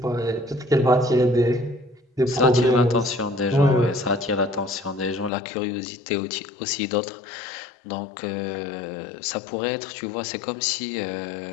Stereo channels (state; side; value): drops out; right; at 5.3 s